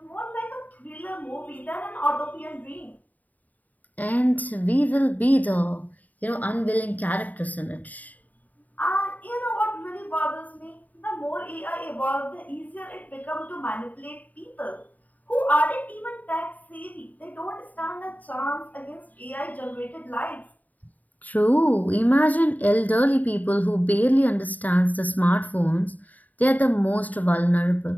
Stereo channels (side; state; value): right; late; 0.078 ms